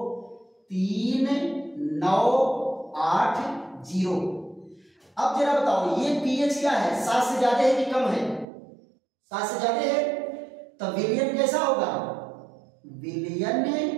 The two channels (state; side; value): drops out; left; at 8.5 s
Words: अब जरा बताओ ये pH क्या है, 7 से ज्यादा है कि कम है, 7 से ज्यादा है, तो विलयन कैसा होगा, विलयन